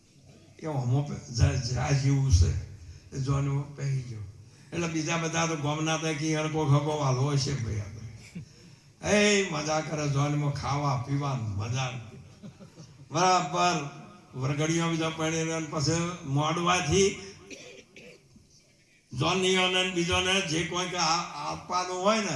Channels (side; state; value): both; identical; correlation 1.00